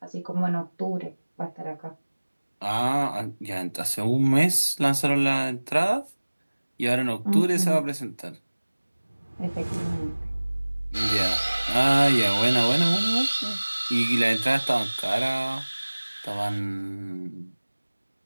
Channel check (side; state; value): both; inverted; correlation -1.00